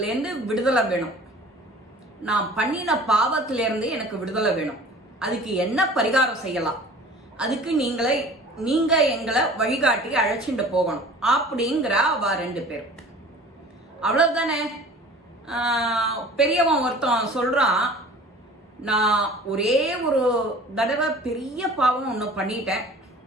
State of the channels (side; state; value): both; normal; correlation 0.45